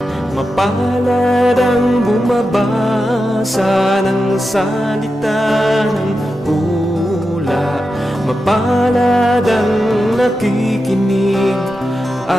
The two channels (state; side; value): normal; both; correlation 0.90